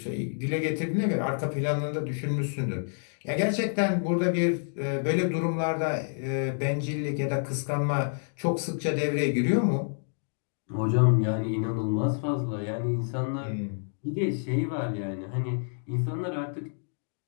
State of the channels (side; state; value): right; silent; digital silence